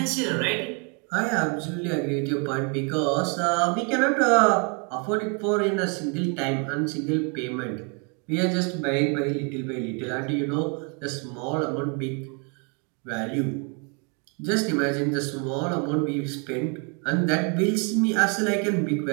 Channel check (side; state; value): left; quieter; 36.0 dB